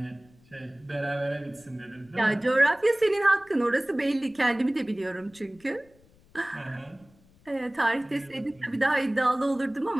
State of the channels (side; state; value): left; noise; rumble, 29 dB below the sound